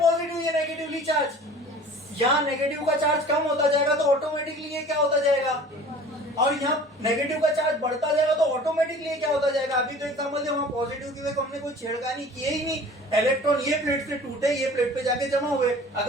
ये नेगेटिवली चार्ज। यहाँ नेगेटिव का चार्ज कम होता जाएगा तो ऑटोमेटिकली ये क्या होता जाएगा, और यहाँ नेगेटिव का चार्ज बढ़ता जाएगा तो ऑटोमेटिकली ये क्या होता जाएगा। अभी तो एग्जांपल दे, वहां पॉजिटिव की वजह हमने कोई छेड़खानी किए ही नहीं, इलेक्ट्रॉन ये प्लेट से टूटे, ये प्लेट पे जाके जमा हुए।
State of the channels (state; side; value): normal; both; correlation 0.45